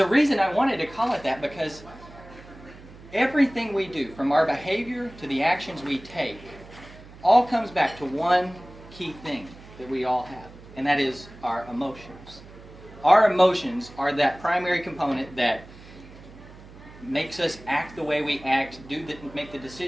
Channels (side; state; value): right; noise; hum, 19 dB below the sound